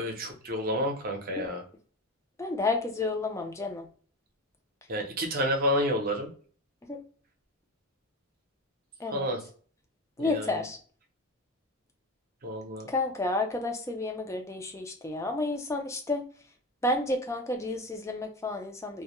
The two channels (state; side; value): normal; both; correlation 0.21